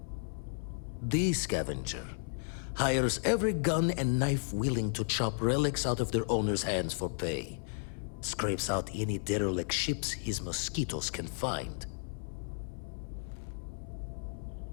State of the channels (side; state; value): right; silent; 55 dB below the other